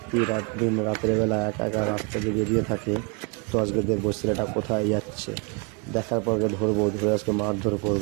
দিন রাতের বেলা একা একা রাস্তা দিয়ে বেরিয়ে থাকে। তো আজকে দেখবো ছেলেটা কোথায় যাচ্ছে, দেখার পর ধরবো, ধরে আজকে মারধর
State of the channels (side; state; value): left; quieter; 32.6 dB